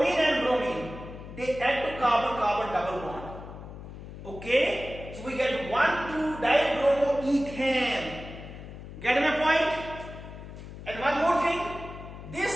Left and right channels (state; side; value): noise; left; hum, 13 dB below the sound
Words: and bromine, they add to carbon-carbon double bond. Okay? So we get 1,2-dibromoethane. Get my point? And one more thing.